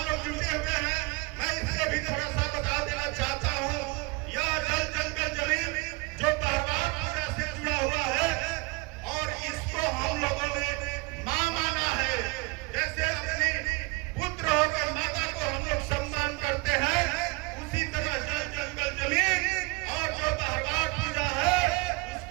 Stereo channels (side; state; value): left; quieter; 25.6 dB